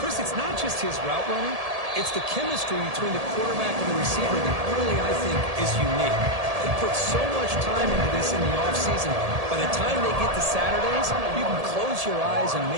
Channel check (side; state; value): left; late; 1.7 ms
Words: Chris, it's not just his route running. It's the chemistry between the quarterback and the receiver that really, I think, is unique. They put so much time into this in the offseason. By the time they get to Saturdays, you can close your eyes and